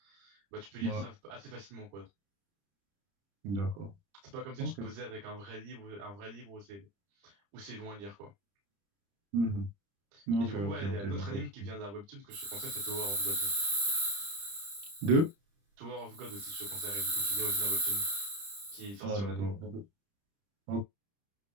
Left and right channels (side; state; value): left; late; 30 ms